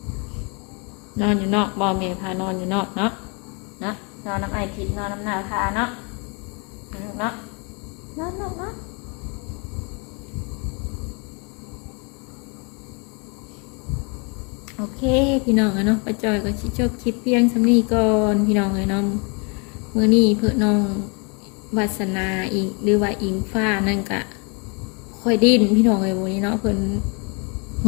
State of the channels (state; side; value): quieter; right; 33.6 dB